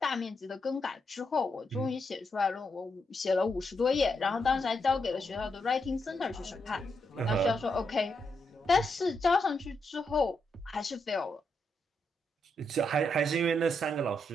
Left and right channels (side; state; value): both; normal; correlation 0.81